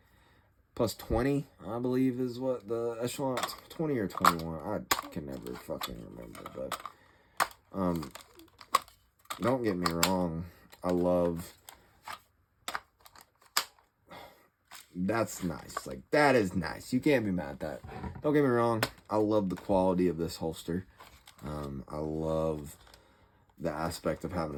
plus 20, I believe is what the echelon, 20 or 21, I can never fucking remember. But don't get me wrong, I love, that's nice, like that is nice, you can't be mad at that. Don't get me wrong, I love the quality of this holster. I love the aspect of having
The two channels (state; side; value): identical; both; correlation 1.00